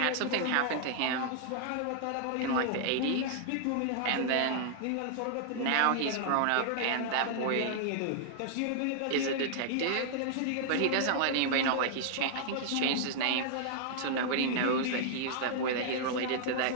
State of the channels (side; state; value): both; different; correlation -0.01